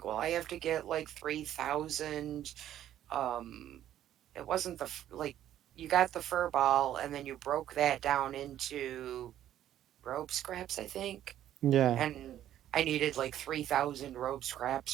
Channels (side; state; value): left; quieter; 11.8 dB